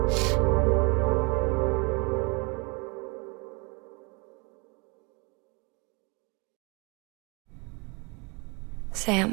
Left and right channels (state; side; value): quieter; left; 29.0 dB